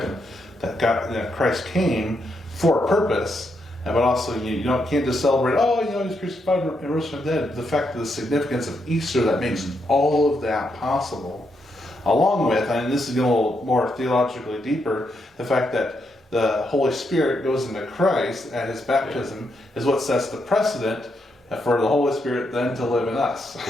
that Christ came for a purpose, but also you can't just celebrate, he's crucified and rose from the dead. The fact of the significance of Easter that makes all of that possible, along with, and this is getting a little more theologically deeper, the fact that the Holy Spirit goes into Christ at his baptism is what sets the precedent for the Holy Spirit then to live in us.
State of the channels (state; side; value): normal; both; correlation 0.80